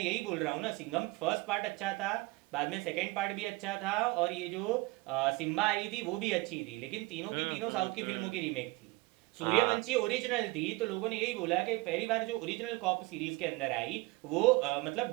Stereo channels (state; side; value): quieter; left; 23.2 dB